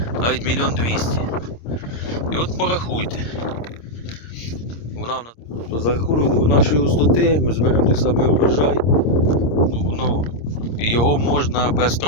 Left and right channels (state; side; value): late; right; 26 ms